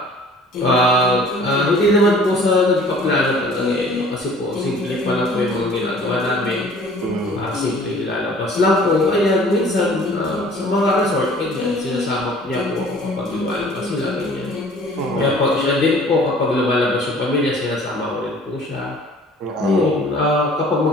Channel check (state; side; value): normal; both; correlation 0.50